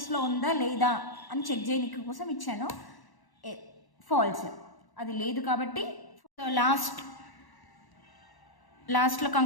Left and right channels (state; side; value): late; right; 1.1 ms